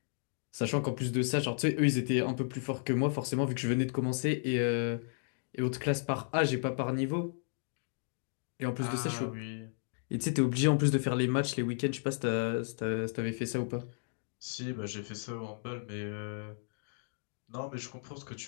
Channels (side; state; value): right; silent; digital silence